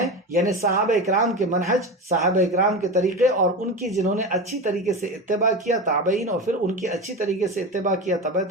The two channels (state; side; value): normal; both; correlation 0.24